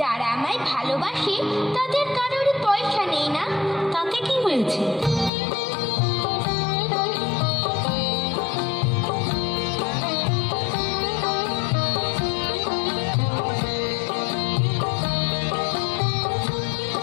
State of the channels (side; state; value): right; drops out; at 5.3 s